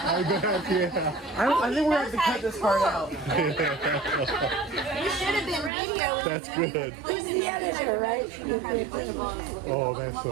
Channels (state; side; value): drops out; left; at 5.7 s